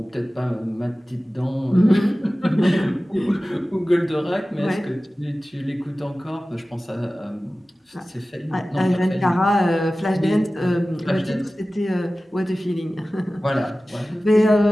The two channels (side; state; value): both; normal; correlation 0.96